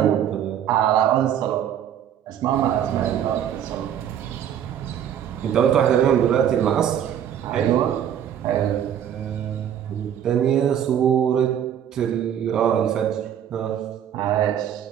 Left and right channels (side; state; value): left; quieter; 9.7 dB